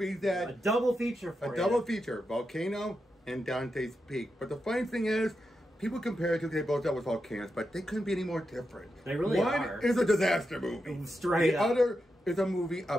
that A double feature for a you. double feature, Volcano and Dante's Peak. But the funny thing is, people compare it to they both dealt with volcanoes, but they couldn't be any more different. They really One are. is a disaster movie. Straight the up. other is a movie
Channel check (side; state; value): both; normal; correlation 0.87